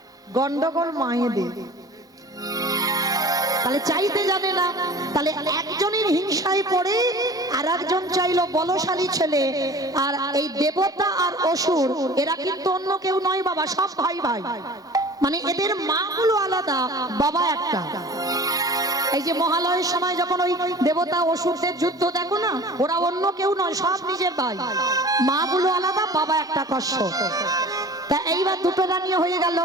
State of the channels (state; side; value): normal; both; correlation 0.42